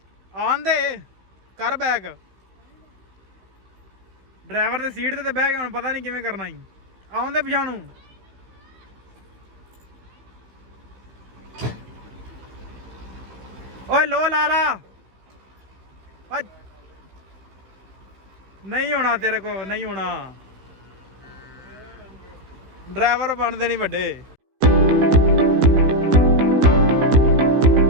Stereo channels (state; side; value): late; left; 15 ms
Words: ਆਂਦੇ ਕਰ ਬੈਕ ਡਰਾਈਵਰ ਦੀ ਸੀਟ ਤੇ ਬਹਿ ਕੇ ਹੁਣ ਪਤਾ ਨਹੀਂ ਕਿਵੇਂ ਕਰਨਾ ਹੀ ਆਉਂਦੇ ਪਛਾਣੂ ਓਏ ਲੋ ਲਾ ਨਹੀਂ ਹੋਣਾ ਤੇਰੇ ਕੋ ਨਹੀਂ ਹੋਣਾ ਡਰਾਈਵਰ ਬਣਦੇ ਨਹੀਂ ਵੱਡੇ